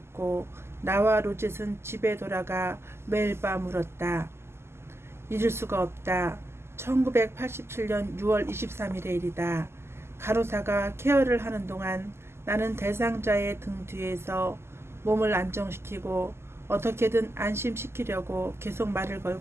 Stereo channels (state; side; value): late; left; 0.12 ms